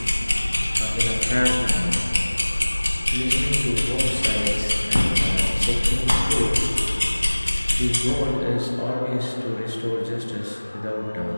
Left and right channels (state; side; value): inverted; both; correlation -1.00